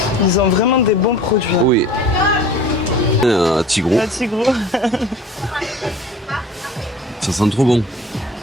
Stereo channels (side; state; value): both; normal; correlation 0.43